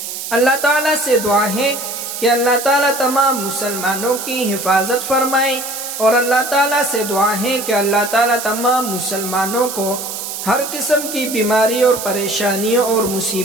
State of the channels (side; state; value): right; noise; hiss, 7 dB below the sound